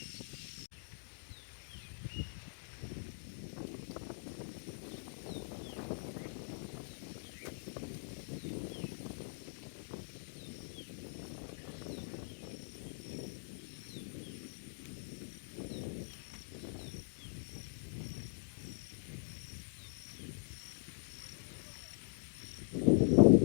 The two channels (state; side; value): silent; right; digital silence